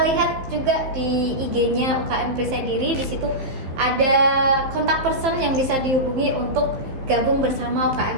lihat juga di IG-nya UKM Perisai Diri. Di situ ada kontak person yang bisa dihubungi untuk gabung bersama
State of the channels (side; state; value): left; late; 15 ms